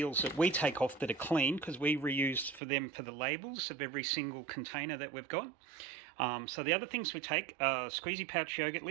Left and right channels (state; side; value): drops out; left; at 2.6 s